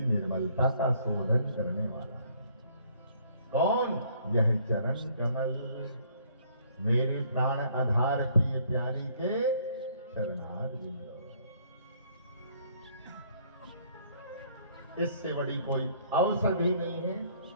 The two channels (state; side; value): inverted; both; correlation -0.62